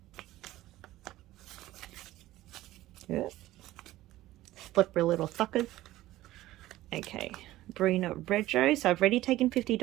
Yep. Slippery little suckers. Okay, Brina Rego. So I've already taken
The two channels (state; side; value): quieter; left; 15.9 dB